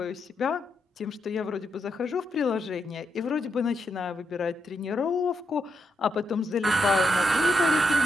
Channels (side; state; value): both; normal; correlation 0.81